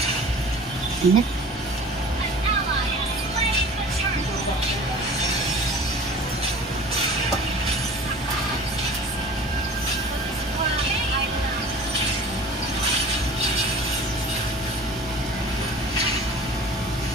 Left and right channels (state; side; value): normal; both; correlation 0.42